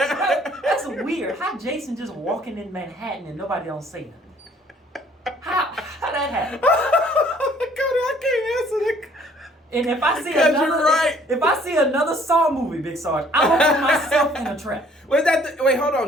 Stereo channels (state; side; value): normal; both; correlation 0.59